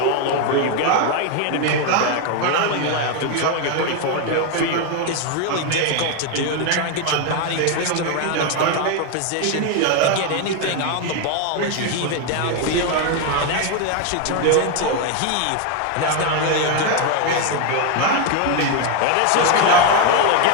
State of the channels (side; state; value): both; different; correlation 0.01